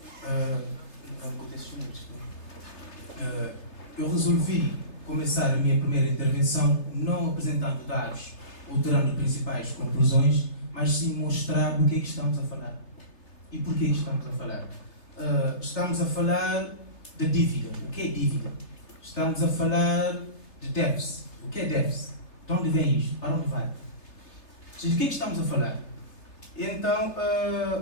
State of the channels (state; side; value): late; right; 3.3 ms